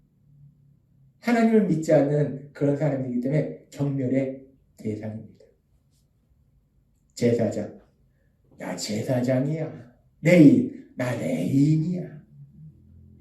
하나님을 믿지 않는 그런 사람이기 때문에 경멸의 대상입니다. 제사장. 나 제사장이야. 레인. 나 레인이야.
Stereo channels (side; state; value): both; identical; correlation 1.00